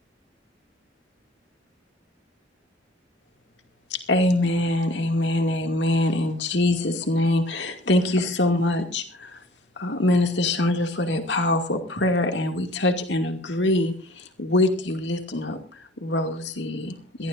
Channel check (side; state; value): both; normal; correlation 0.50